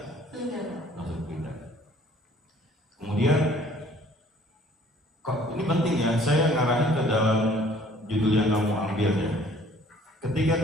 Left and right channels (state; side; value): normal; both; correlation 0.56